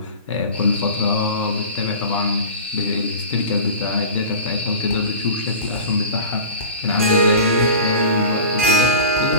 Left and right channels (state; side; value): inverted; both; correlation -0.34